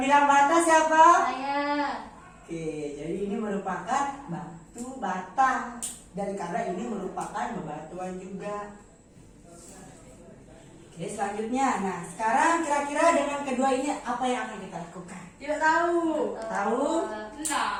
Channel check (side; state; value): both; identical; correlation 1.00